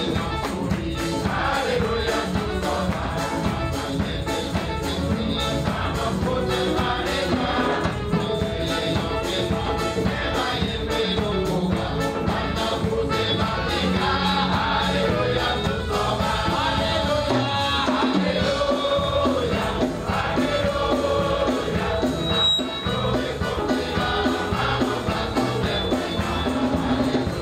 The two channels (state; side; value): identical; both; correlation 1.00